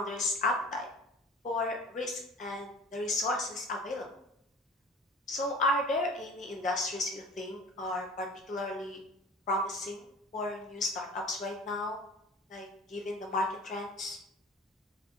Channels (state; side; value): normal; both; correlation 0.41